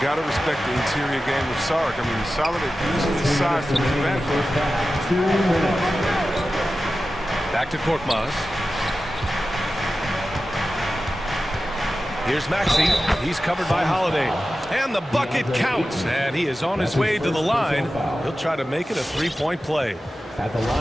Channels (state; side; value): normal; both; correlation 0.94